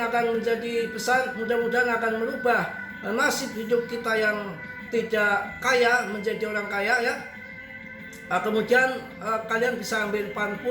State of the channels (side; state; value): both; identical; correlation 1.00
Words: akan menjadi besar, mudah-mudahan akan merubah nasib hidup kita yang tidak kaya menjadi orang kaya ya. Kemudian kalian bisa ambil pan